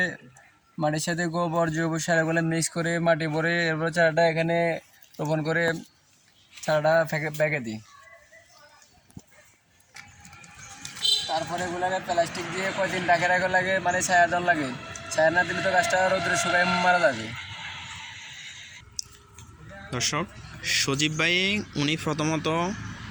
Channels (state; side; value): identical; both; correlation 1.00